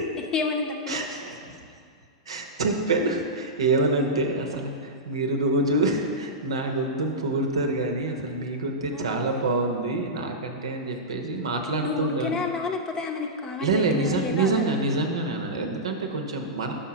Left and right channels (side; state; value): both; normal; correlation -0.14